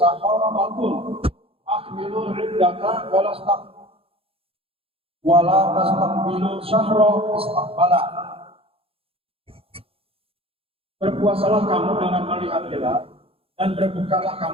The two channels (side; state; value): left; late; 0.27 ms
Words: akmilu iddata wala tastaqbilu syahra istaqbala. Berpuasalah kamu dengan melihat hilal dan berbukalah